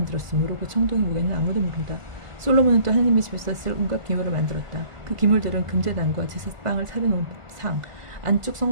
그 청동의 무게는 아무도 모른다. 솔로몬은 또 하나님의 집에서 쓸 온갖 기물을 만들었다. 그 기물들은 금제단과 제사빵을 차려놓은 상, 안쪽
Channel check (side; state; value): left; late; 1.5 ms